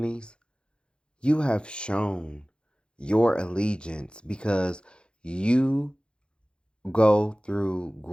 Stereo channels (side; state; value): right; late; 0.053 ms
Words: you have shown your allegiance because you go through